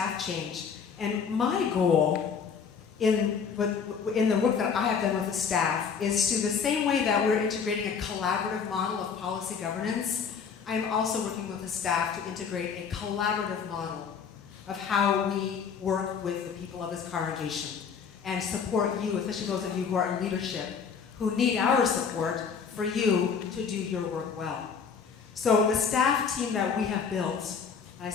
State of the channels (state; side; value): quieter; right; 6.4 dB